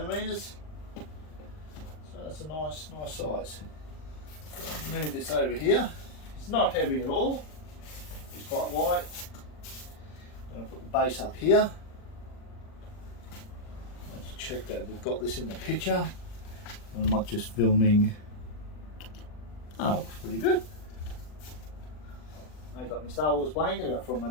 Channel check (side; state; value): right; late; 39 ms